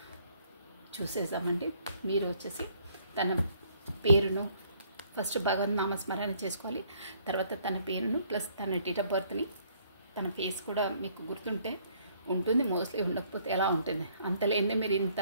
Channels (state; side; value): inverted; both; correlation -0.64